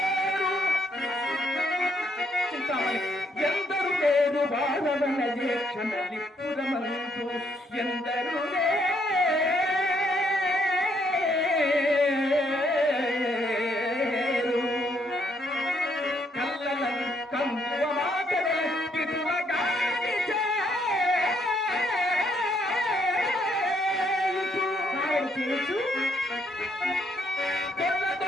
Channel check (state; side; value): normal; both; correlation 0.72